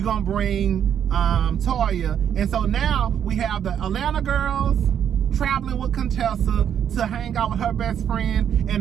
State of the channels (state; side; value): quieter; left; 9.0 dB